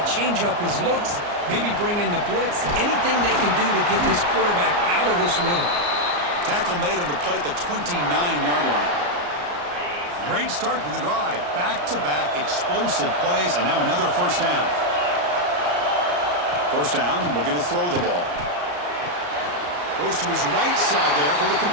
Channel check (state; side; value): late; left; 34 ms